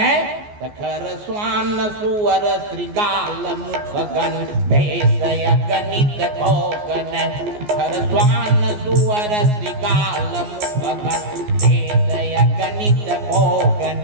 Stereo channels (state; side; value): late; left; 14 ms